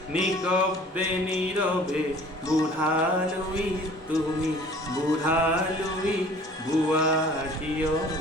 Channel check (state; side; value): normal; both; correlation 0.50